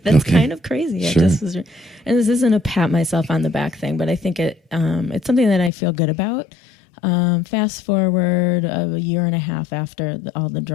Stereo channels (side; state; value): right; drops out; at 5.7 s